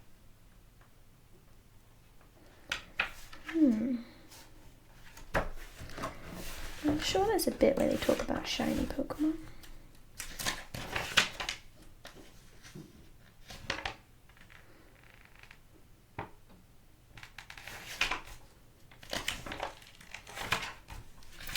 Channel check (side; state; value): both; identical; correlation 1.00